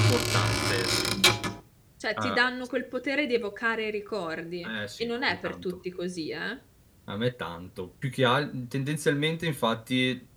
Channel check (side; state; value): both; identical; correlation 1.00